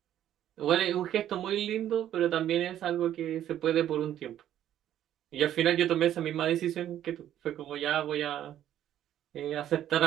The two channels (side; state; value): left; quieter; 11.4 dB